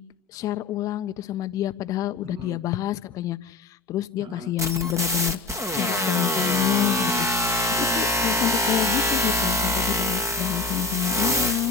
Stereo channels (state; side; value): quieter; right; 3.8 dB